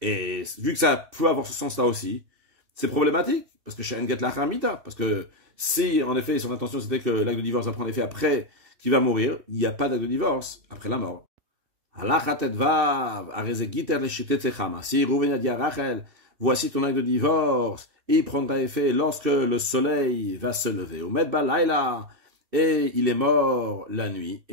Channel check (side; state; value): left; late; 2.7 ms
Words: Et vu que ça peut avoir ce sens-là aussi, c'est problématique, parce que chez Enget l'achamita, parce que si, en effet, son intention c'était que l'acte de divorce va prendre effet après qu'il va mourir, il n'y a pas d'acte de divorce après la mort. Si Rouven a dit à Rachel, voici ton acte de divorce, et il prendra effet lorsque le soleil va se lever. Au Medba Laila, et il est mort la nuit.